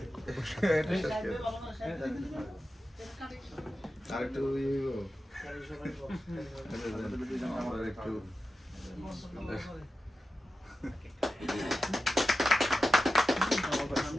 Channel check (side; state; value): both; normal; correlation 0.93